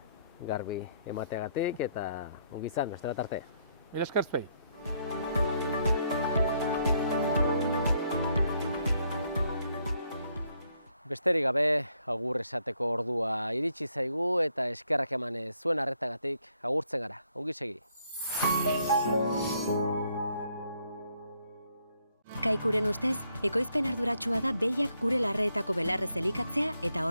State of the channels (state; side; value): inverted; both; correlation -0.72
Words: garbi emateagatik, eta ongi izan, beste bat arte. Mila esker zuei. Besterik gabe, agur esateko ordua iritsi zaigu, eta eskerrak eman zuen arretagatik agurtzen gara. Ongi segi. Kaikuren ustez, ekoizpen arduratsua da behiak gure larreetako belarrez elikatzea eta